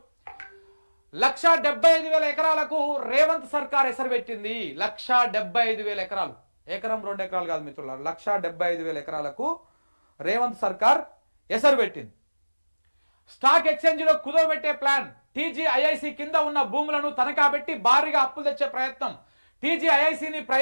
1,75,000 ఎకరాలకు రేవంత్ సర్కార్ ఎసరు పెట్టింది. 1,75,000 ఎకరాలు, ఎకరం 2 ఎకరాలు కాదు మిత్రులారా, 1,75,000 ఎకరాలకు రేవంత్ సర్కార్ ఎసరు పెట్టింది. స్టాక్ ఎక్స్చేంజ్లో కుదవబెట్టే ప్లాన్. టీజీఐఐసి కింద ఉన్న భూములను తనఖా పెట్టి భారీగా అప్పులు తెచ్చే ప్రయత్నం. టీజీఐఐసిని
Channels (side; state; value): both; inverted; correlation -1.00